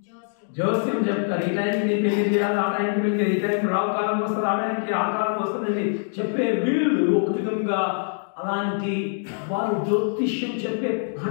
జోస్యం చెప్తారు, ఈ టైంకి నీ పెళ్లి చేయాలి, ఆ టైంకి పెళ్లి, ఈ టైంకి రావు కాలం వస్తుంది, ఆ టైంకి ఆ కాలం వస్తుందని చెప్పే వీళ్ళు ఒక విధంగా అలాంటి వారు జ్యోతిష్యం చెప్పే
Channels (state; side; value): silent; right; digital silence